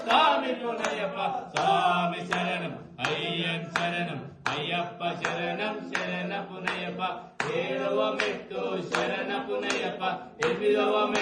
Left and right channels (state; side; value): identical; both; correlation 1.00